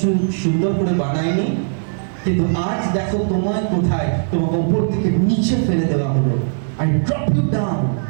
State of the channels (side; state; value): left; silent; 67 dB below the other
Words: সুন্দর করে বানাইনি? কিন্তু আজ দেখো তোমায় কোথায়, তোমাকে উপর থেকে নিচে ফেলে দেওয়া হলো। I drop you down।